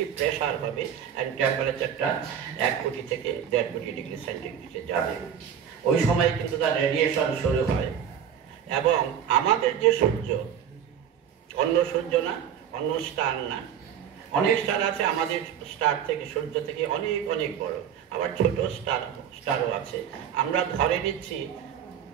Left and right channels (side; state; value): left; quieter; 8.7 dB